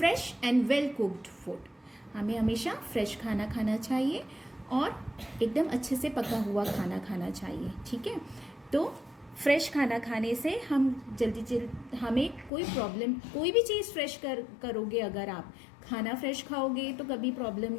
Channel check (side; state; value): right; drops out; at 12.5 s